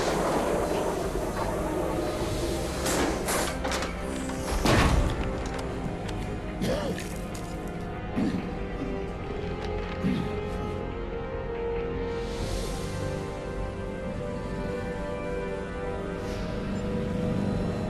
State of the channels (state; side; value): identical; both; correlation 1.00